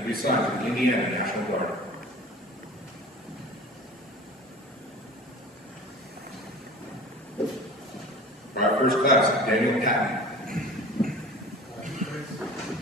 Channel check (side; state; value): both; normal; correlation 0.40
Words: be assigned to the Indiana National Guard. Private First Class Daniel Patton.